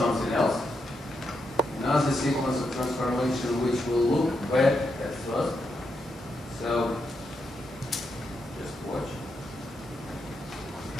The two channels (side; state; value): both; normal; correlation 0.83